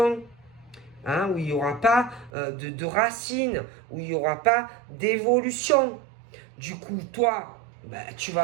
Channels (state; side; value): drops out; left; at 2.3 s